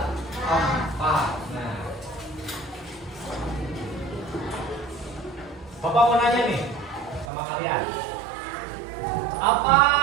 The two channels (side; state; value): left; drops out; at 7.2 s